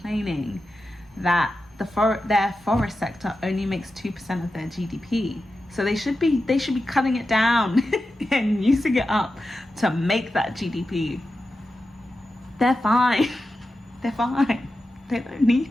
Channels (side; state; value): both; normal; correlation 0.91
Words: that their forest sector only makes 2% of their GDP. So they should be cutting it down and using it up to make that GDP. They're fine. They're fine. They don't